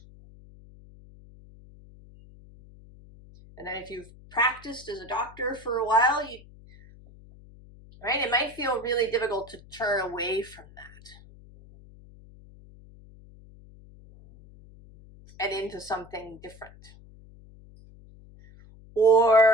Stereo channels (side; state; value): left; noise; hum, 22 dB below the sound